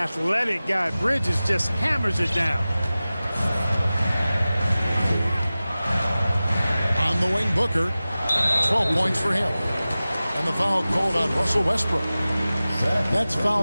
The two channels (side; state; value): both; inverted; correlation -0.97